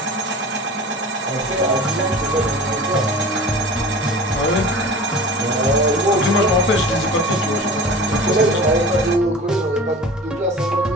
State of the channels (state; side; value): normal; both; correlation 0.37